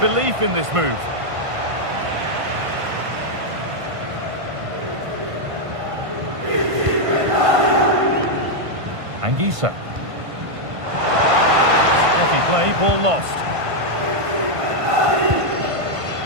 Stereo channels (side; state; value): left; late; 1.5 ms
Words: in this move. Anguissa. Steady play, ball lost.